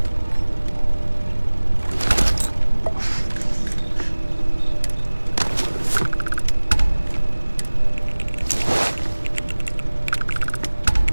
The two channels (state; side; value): inverted; both; correlation -1.00